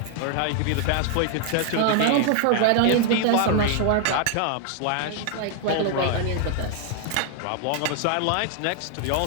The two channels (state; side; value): different; both; correlation 0.00